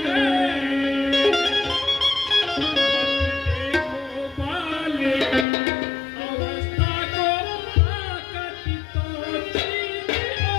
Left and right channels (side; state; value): right; drops out; at 5.5 s